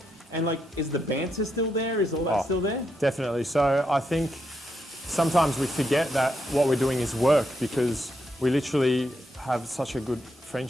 And like, is the banter still there? Is all that still there? Definitely. So I think sometimes we forget that what we're doing is work, because we literally have such a good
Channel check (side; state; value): both; normal; correlation 0.81